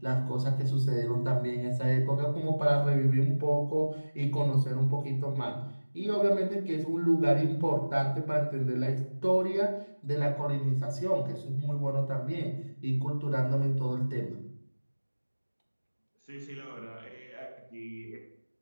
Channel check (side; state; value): both; inverted; correlation -1.00